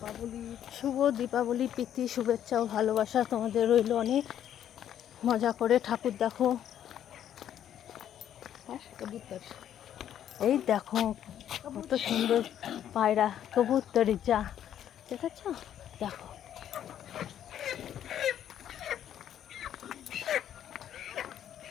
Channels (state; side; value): quieter; right; 10.4 dB